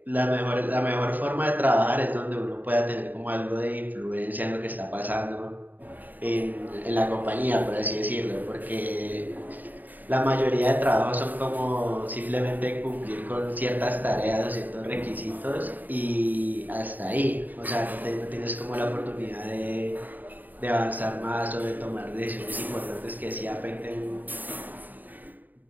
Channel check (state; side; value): late; left; 0.085 ms